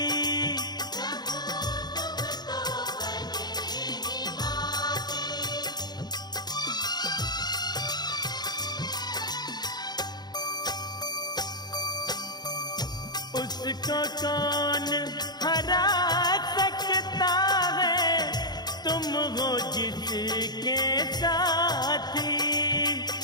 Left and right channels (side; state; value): right; late; 0.20 ms